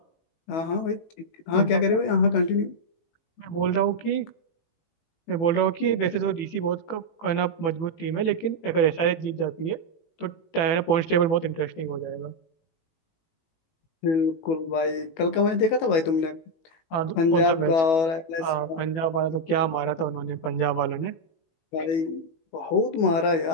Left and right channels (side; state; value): right; late; 18 ms